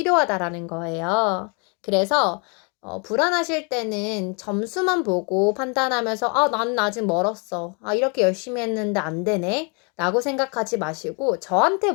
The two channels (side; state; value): right; quieter; 35.0 dB